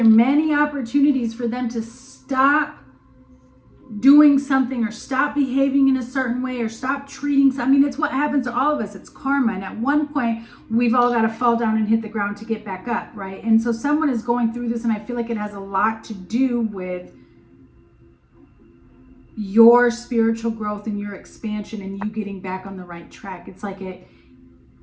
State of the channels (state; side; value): identical; both; correlation 1.00